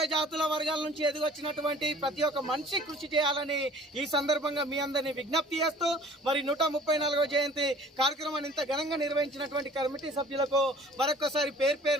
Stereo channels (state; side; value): normal; both; correlation 0.50